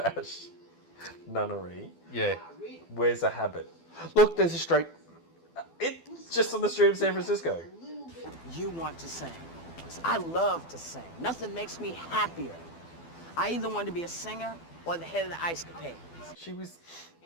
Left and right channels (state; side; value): late; right; 12 ms